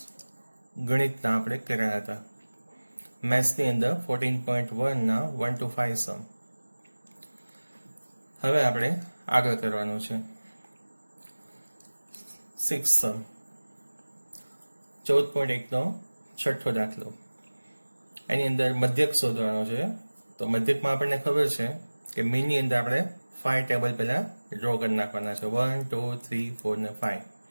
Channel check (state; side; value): inverted; both; correlation -1.00